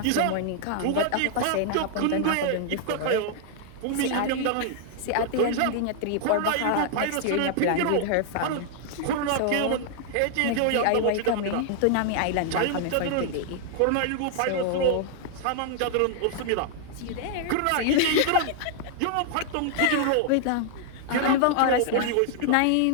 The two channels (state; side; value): different; both; correlation -0.01